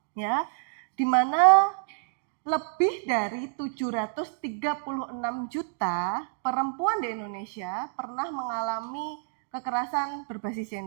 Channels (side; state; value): left; silent; digital silence